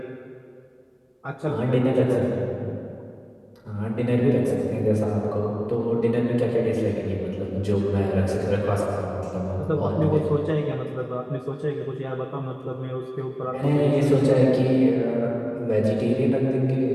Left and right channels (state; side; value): identical; both; correlation 1.00